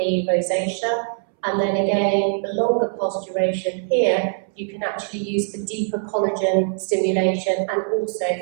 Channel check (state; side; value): silent; left; 64 dB below the other